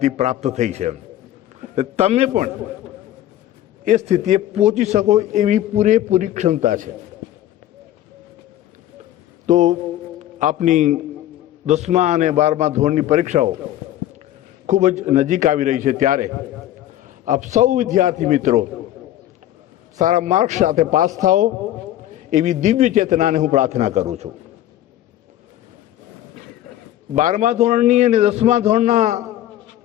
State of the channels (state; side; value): quieter; right; 13.1 dB